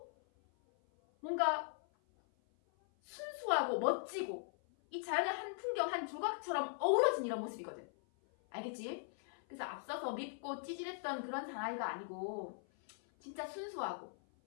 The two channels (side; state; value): right; silent; 51 dB below the other